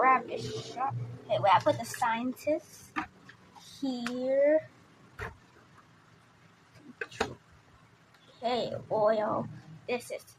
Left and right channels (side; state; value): both; identical; correlation 1.00